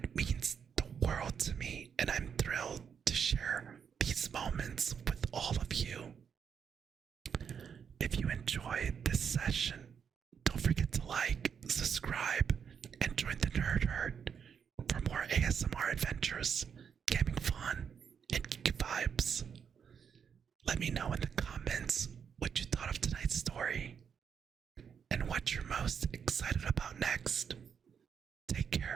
means the world to me, and I'm thrilled to share these moments with all of you. ASMR adventures, gaming fun, and geeky vibes. Let me know in the comments what you thought of tonight's story and what you're most excited about next. Take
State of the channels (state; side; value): quieter; left; 7.2 dB